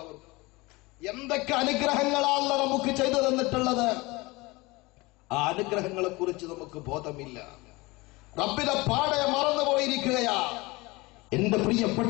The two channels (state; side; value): quieter; right; 23.1 dB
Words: ഓർക്കും. എന്തൊക്കെ അനുഗ്രഹങ്ങളാണ് നമുക്ക് ചെയ്തു തന്നിട്ടുള്ളത്. ആ അനുഗ്രഹങ്ങളെ കുറിച്ച് നമുക്ക് ബോധമില്ല. റബ്ബിനെ പാടെ മറന്നുപോയിരിക്കുകയാ. എന്റെ